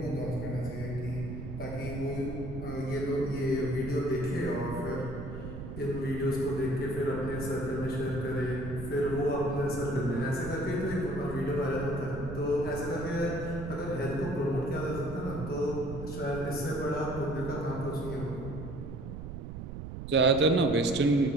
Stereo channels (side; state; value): right; noise; rumble, 8 dB below the sound